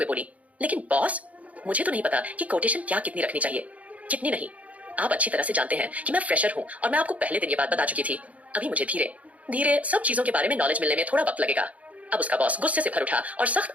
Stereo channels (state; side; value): late; left; 0.069 ms